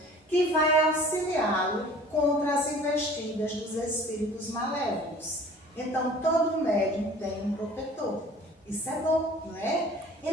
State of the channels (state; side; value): normal; both; correlation 0.47